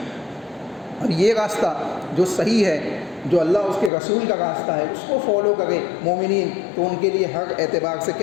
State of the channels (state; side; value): drops out; right; at 3.9 s